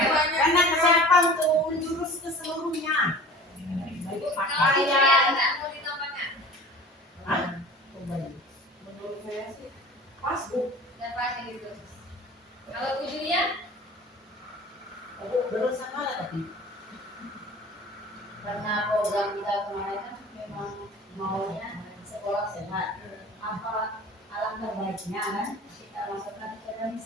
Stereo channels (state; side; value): normal; both; correlation 0.41